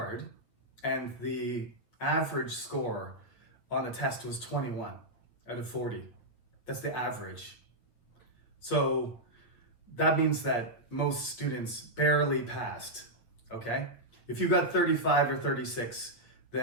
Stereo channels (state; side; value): late; right; 8.8 ms